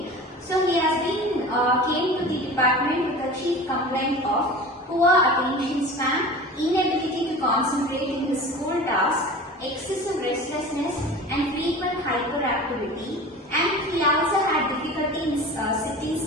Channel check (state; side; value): normal; both; correlation 0.36